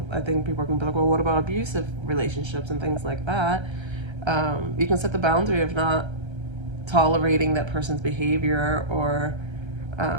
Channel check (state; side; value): late; left; 1.3 ms